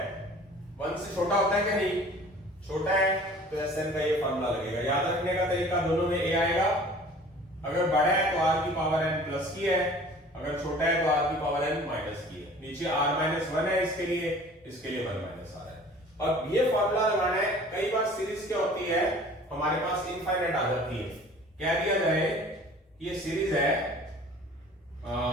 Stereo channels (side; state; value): both; normal; correlation 0.47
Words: 1 से छोटा होता है क्या, नहीं छोटा है, तो SN का ये फॉर्मूला लगेगा। याद रखने का तरीका, दोनों में A आएगा, अगर बड़ा है तो R की पावर n प्लस की है, अगर छोटा है तो R की पावर n माइनस की है। नीचे R-1 है इसके लिए 1 माइनस R है। अब ये फॉर्मूला लगाना है। कई बार सीरीज क्या होती है, हमारे पास इनफाइनाइट आ जाती है। कह दिया जाए ये सीरीज है,